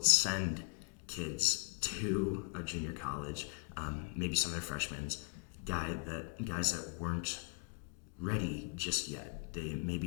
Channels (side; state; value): right; quieter; 33.7 dB